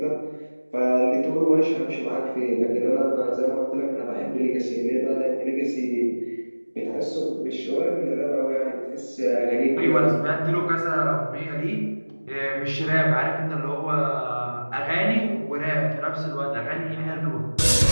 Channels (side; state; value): both; inverted; correlation -1.00